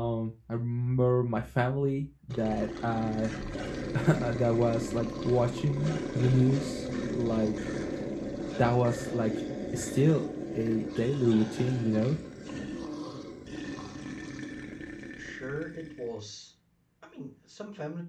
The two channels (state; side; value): identical; both; correlation 1.00